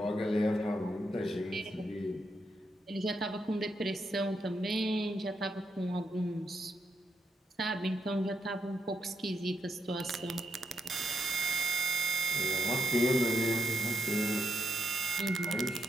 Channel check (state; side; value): normal; both; correlation 0.79